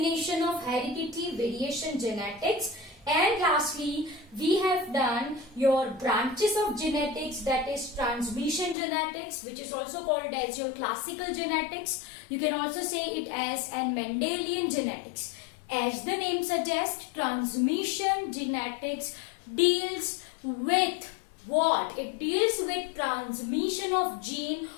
of heredity, variation, genetics, and lastly we have done your branches of genetics, that is transmission genetics, which is also called as your classical genetics. You can also say it as an Mendelian genetics. As the name suggests, transmission genetics deals with what? It deals with transmission of gene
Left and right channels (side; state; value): right; drops out; at 8.8 s